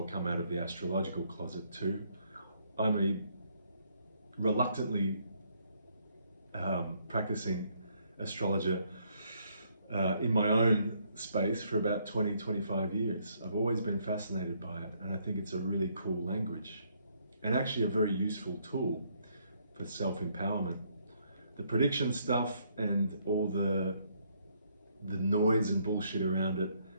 come out of the astrological closet too. I'm a reluctantly practicing astrologer in my own space for about 20-25 years. I've always been fascinated by it, and I think it's a really cool language and actually a very useful tool for self-empowerment. The prediction stuff and all the noise and bullshit around it,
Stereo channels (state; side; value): inverted; both; correlation -0.70